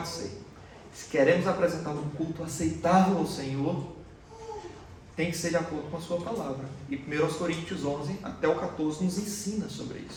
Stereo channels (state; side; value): identical; both; correlation 1.00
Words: ser. Se queremos apresentar um culto aceitável ao Senhor, tem que ser de acordo com a sua palavra. E 1 Coríntios 11 até o 14 nos ensina sobre